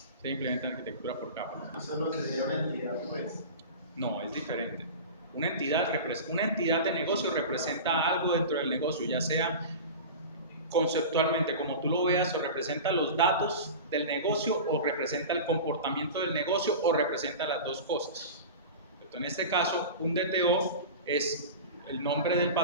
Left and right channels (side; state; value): both; inverted; correlation -0.31